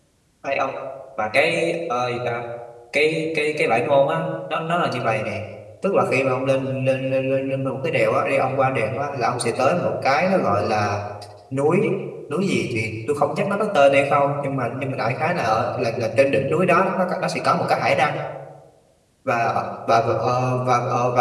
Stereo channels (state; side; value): identical; both; correlation 1.00